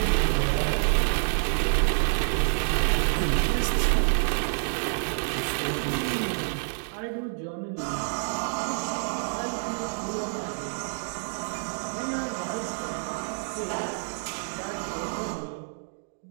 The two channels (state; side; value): silent; left; digital silence